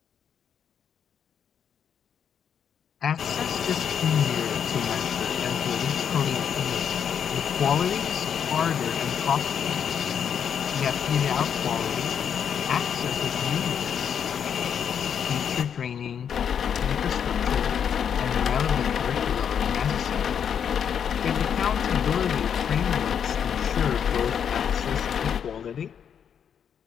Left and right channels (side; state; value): right; quieter; 8.0 dB